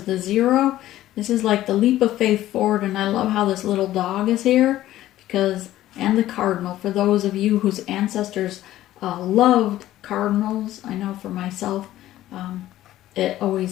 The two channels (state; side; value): quieter; right; 14.2 dB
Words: the 0. This is like the leap of faith forward, and I love how this little dog is here, because, and the cardinal, for those of you whose ancestors loved cardinals. I know for myself, it